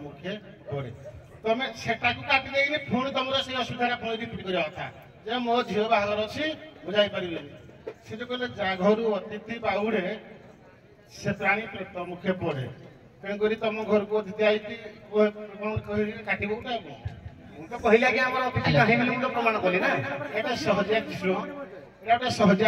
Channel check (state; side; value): identical; both; correlation 1.00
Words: ମୁଖେ ପଡେ। ତମେ ସେଟାକୁ କାଟି ଦେଇକି ପୁଣି ତମର ସେଇ ଅସୁବିଧାଟା ପୁଣି ରିପିଟ୍ କରିବା କଥା ଯେ ମୋ ଝିଅ ବାହାଘର ଅଛି ମୁଁ ଯାଇପାରିବିନି। ସେ ଯୋଉ କହିଲେ ଯା ଘରୁ ଅତିଥି ବାହୁରେ ସେ ପ୍ରାଣୀ ପ୍ରତ ମୁଖେ ପଡେ ତେଣୁକରି ତମ ଘରକୁ ଅତିଥି ଆଇକି କଣ କହିକି କାଟିବ ଗୋଟେ ଆଉ କଣ। ମୁଁ ତ କହିଲି ଆଜ୍ଞା ଆମର ଅତିଥି ନାହିଁ ବୋଲି ମୁଁ ତ ପ୍ରମାଣ କଲି ନା। ଏଇଟା ସହଜିଆ ଜିନିଷ ଏଇଟା ଗୋଟେ ସହଜିଆ